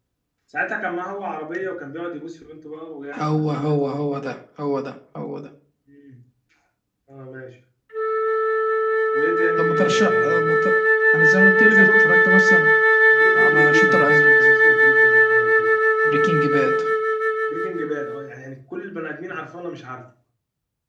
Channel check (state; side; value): identical; both; correlation 1.00